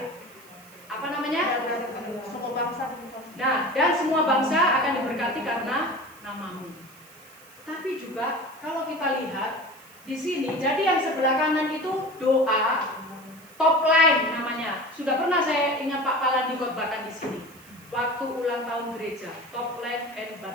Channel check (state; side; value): noise; right; hiss, 24 dB below the sound